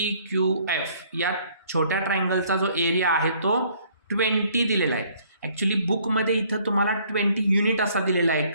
Q F, या छोट्या ट्रायंगलचा जो एरिया आहे तो 20 दिलेला आहे. ॲक्च्युली बुकमध्ये इथं तुम्हाला 20 युनिट असा दिलेला आहे.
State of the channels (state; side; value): inverted; both; correlation -0.61